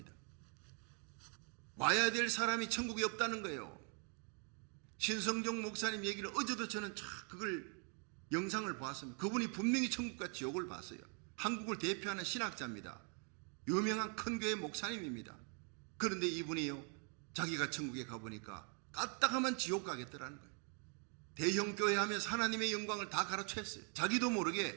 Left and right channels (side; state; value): left; quieter; 39.3 dB